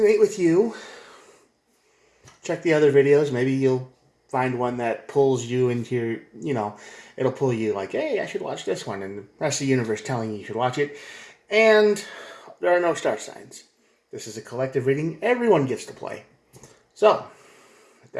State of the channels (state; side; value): identical; both; correlation 1.00